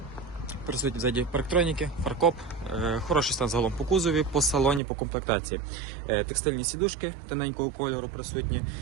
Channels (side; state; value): left; drops out; at 4.8 s